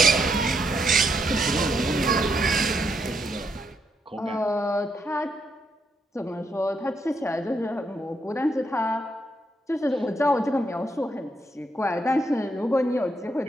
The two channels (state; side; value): normal; both; correlation 0.77